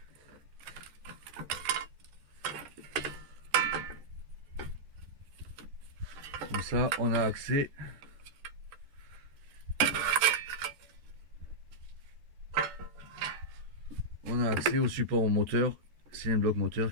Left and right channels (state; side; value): late; left; 13 ms